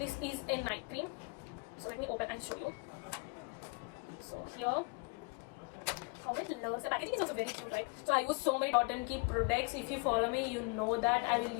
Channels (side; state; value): right; quieter; 31.3 dB